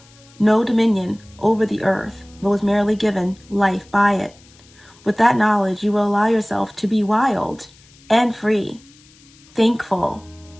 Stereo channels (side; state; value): left; noise; hiss, 27 dB below the sound